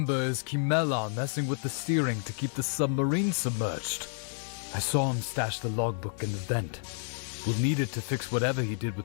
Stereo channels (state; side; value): silent; right; 56 dB below the other